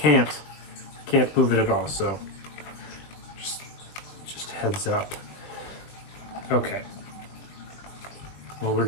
move it at all. So just heads up. Okay. Well, we're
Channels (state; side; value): late; right; 21 ms